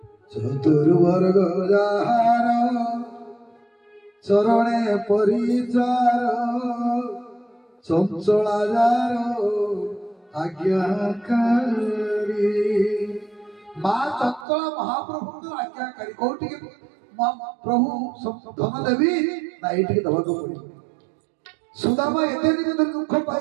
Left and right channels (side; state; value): left; drops out; at 14.5 s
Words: चतुर्वर्ग जार चरणे परिचार चंचला जार आज्ञाकारी माँ चंचला महाप्रभु आज्ञाकारी कौटी प्रभु धन देवी ना ये दवा को पड़े सुदामा एते दिन दुख